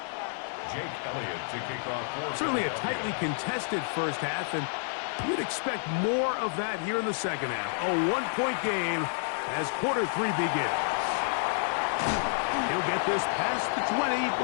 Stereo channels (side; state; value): right; silent; digital silence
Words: Jake Elliott to kick off. Certainly a tightly contested first half, and you'd expect more of that here in the second half. A one-point game as quarter 3 begins. He'll get this past the 20